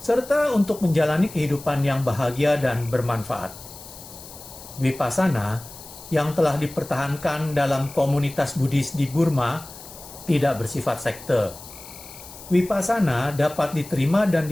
serta untuk menjalani kehidupan yang bahagia dan bermanfaat. Vipassana yang telah dipertahankan dalam komunitas Buddhis di Burma tidak bersifat sekte. Vipassana dapat diterima dan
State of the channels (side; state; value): left; noise; hiss, 16 dB below the sound